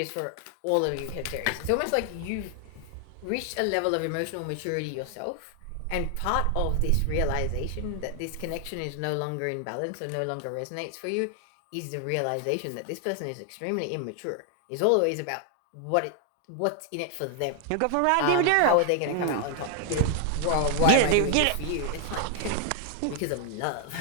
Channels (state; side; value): different; both; correlation 0.00